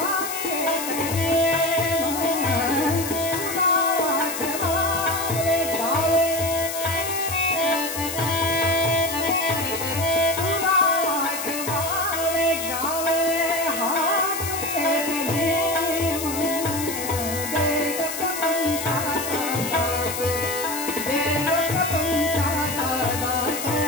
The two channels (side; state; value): left; noise; hiss, 6 dB below the sound